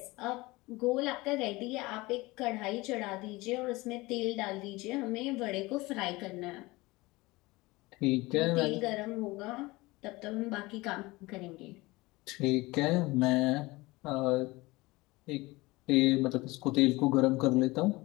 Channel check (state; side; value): quieter; right; 21.7 dB